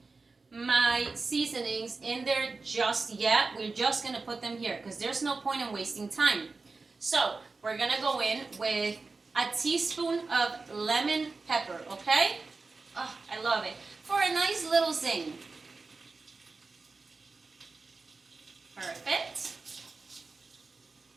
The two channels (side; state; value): left; quieter; 4.0 dB